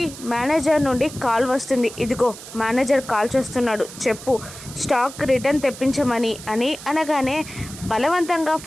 మేనేజర్ నుండి కాల్ వస్తుంది. ఇదిగో మేనేజర్ కాల్ చేస్తున్నాడు, చెప్పు, స్టాక్ రిటర్న్ తెప్పించమని అని అనగానే బలవంతంగా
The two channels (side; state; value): right; noise; hiss, 14 dB below the sound